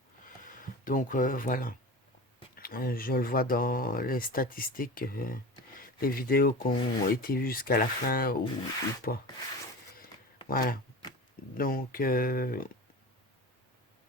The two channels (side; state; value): both; normal; correlation 0.31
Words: Donc voilà. Je le vois dans les statistiques. les vidéos qui ont été vues jusqu'à la fin ou pas. Voilà. Donc, je